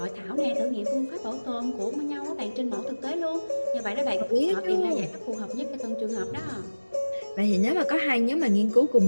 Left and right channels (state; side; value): inverted; both; correlation -1.00